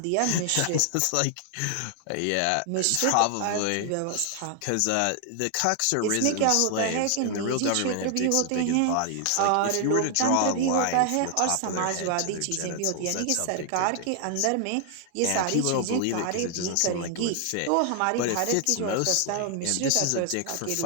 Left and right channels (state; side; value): different; both; correlation 0.00